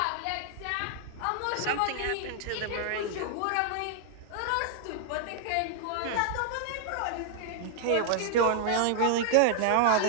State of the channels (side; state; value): both; different; correlation 0.00